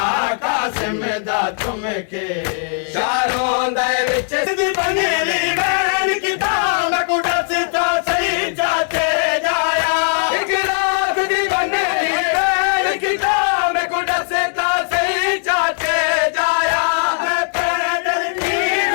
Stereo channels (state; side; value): silent; right; digital silence